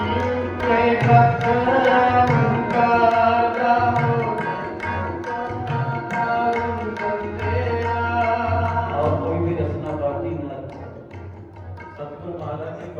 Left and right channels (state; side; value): identical; both; correlation 1.00